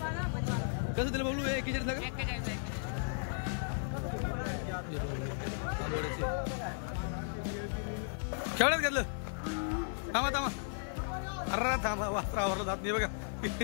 कसं दिलं बबलू? 41ला का? 41ला. हे बघ तांबोड्याचे. केवढ्यात घेतलं? थांबा थांबा. अरे थांबा वासरावर जात नाही बघा.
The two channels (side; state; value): right; silent; digital silence